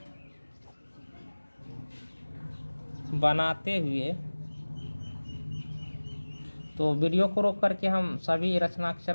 बनाते हुए, तो वीडियो को रोक करके हम सभी रचना के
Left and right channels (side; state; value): both; inverted; correlation -1.00